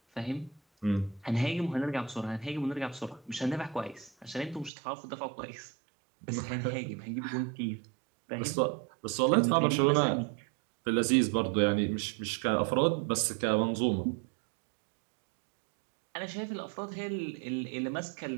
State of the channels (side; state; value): left; drops out; at 4.7 s